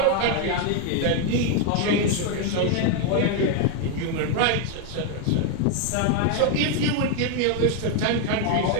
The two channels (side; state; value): both; different; correlation 0.01